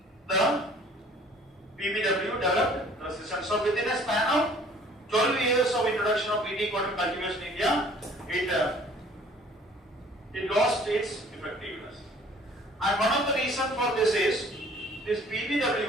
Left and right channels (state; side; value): normal; both; correlation 0.54